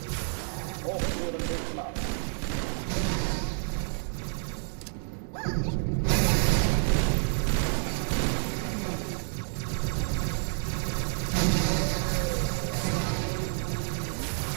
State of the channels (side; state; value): left; silent; 59 dB below the other